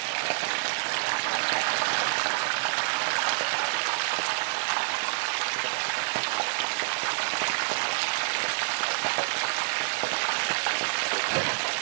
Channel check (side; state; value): left; silent; 60 dB below the other